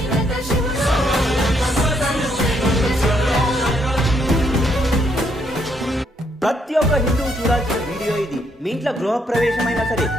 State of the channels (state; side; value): normal; both; correlation 0.73